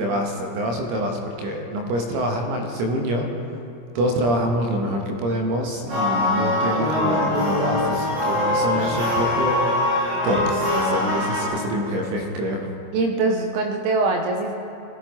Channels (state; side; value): late; left; 26 ms